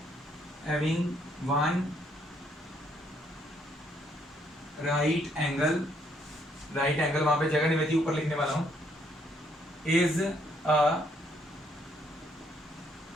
having one right angle वहां पे जगह नहीं बची, ऊपर लिखने वाला हूं, is a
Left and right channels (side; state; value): both; normal; correlation 0.70